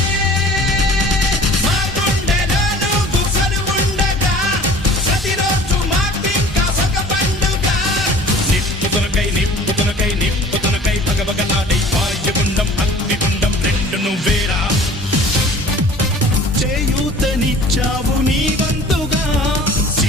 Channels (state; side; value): normal; both; correlation 0.46